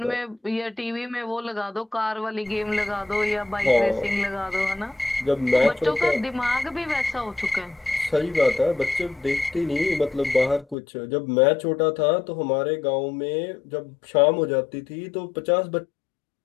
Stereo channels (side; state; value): right; drops out; at 10.8 s